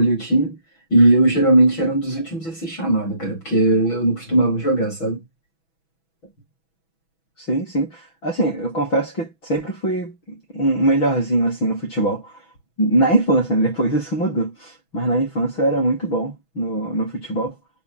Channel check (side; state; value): right; late; 6.1 ms